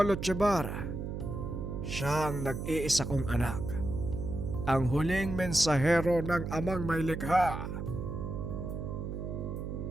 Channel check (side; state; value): right; noise; hum, 5 dB below the sound